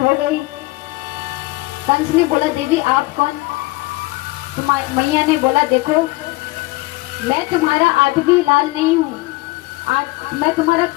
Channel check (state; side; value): quieter; right; 21.7 dB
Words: गई। कंस ने बोला देवी आप कौन? मैया ने बोला देखो मैं तुम्हारा आठवीं लाल नहीं हूँ, मैं तुम्हारा